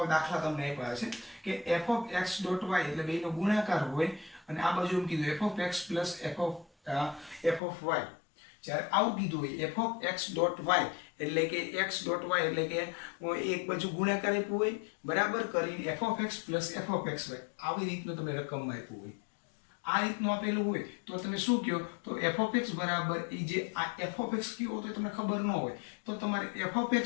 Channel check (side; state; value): right; drops out; at 7.6 s